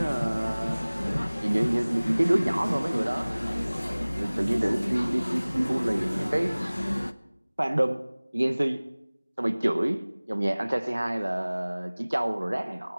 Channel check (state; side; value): inverted; both; correlation -1.00